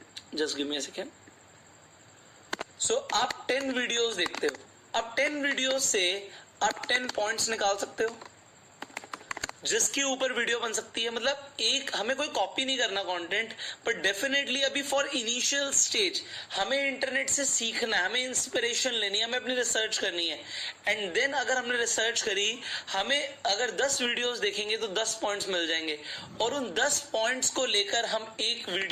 just give me a second. So आप 10 वीडियोस देखते हो, अब 10 वीडियोस से आप 10 पॉइंट्स निकाल सकते हो जिसके ऊपर वीडियो बन सकती है। मतलब एक, हमें कोई कॉपी नहीं करना कंटेंट, बट डेफिनेटली अभी फॉर इनिशियल स्टेज हमें इंटरनेट से सीखना है, हमें इंस्पिरेशन लेनी है, हमें अपनी रिसर्च करनी है। एंड देन अगर हमने रिसर्च करी, हमें अगर 10 वीडियोस देखेंगे तो 10 पॉइंट्स मिल जाएंगे, और उन 10 पॉइंट्स को लेकर हम एक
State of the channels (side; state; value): both; identical; correlation 1.00